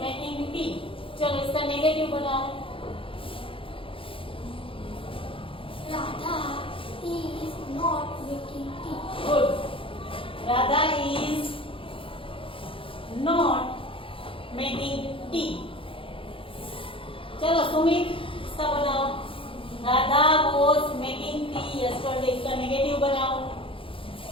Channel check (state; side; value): late; right; 0.26 ms